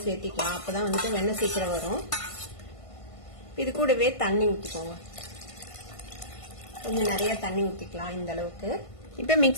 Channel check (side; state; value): right; late; 1.5 ms